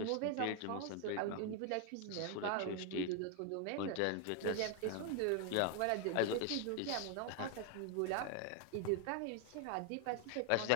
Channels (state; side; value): different; both; correlation 0.00